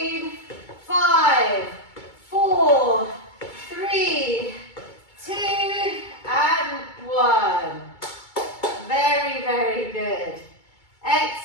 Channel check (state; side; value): late; right; 2.2 ms